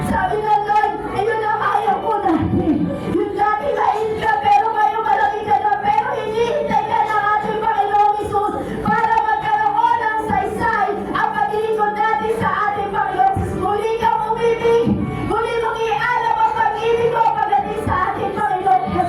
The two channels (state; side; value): identical; both; correlation 1.00